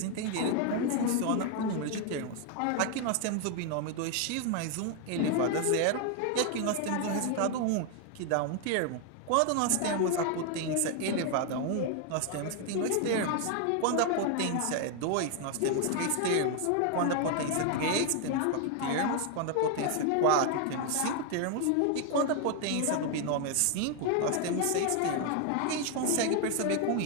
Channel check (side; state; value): both; different; correlation 0.00